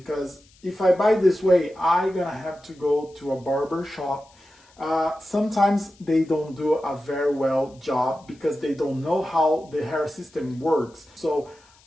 if I buy this way, I'm gonna have to go to a barber shop. Sometimes they don't do a very well job because they don't know how the hair system works. So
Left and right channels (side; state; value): left; noise; hiss, 30 dB below the sound